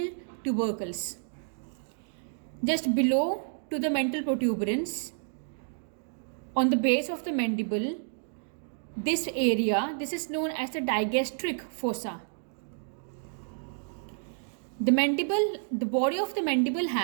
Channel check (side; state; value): left; silent; digital silence